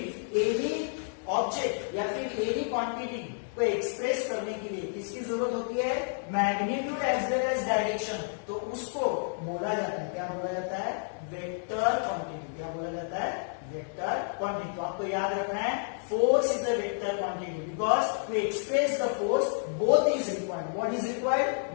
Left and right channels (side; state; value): right; silent; 58 dB below the other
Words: any object या फिर एनी क्वांटिटी को एक्सप्रेस करने के लिए किसकी जरूरत होती है, magnitude as well as direction, तो उसको बोला जाता है, क्या बोला जाता है, वेक्टर क्वांटिटी। क्या बोला जाता है, वेक्टर क्वांटिटी। तो आपको याद रखना है, force is a vector quantity because to express the force both is required. What is required,